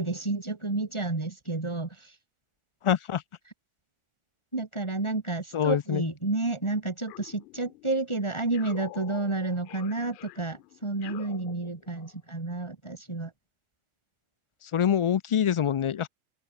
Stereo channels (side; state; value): right; late; 1.4 ms